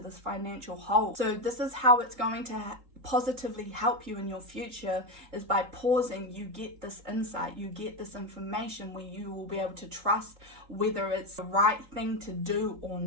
financial hole. So this is how it's going to positively help you in your future, is by pausing. You get this insight, you get this information where you will be able to trust whether it's the right thing to do or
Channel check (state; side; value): late; left; 3.9 ms